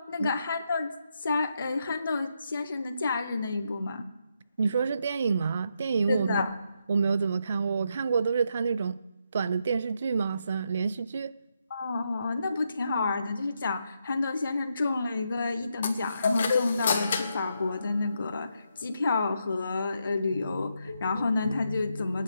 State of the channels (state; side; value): inverted; both; correlation -0.81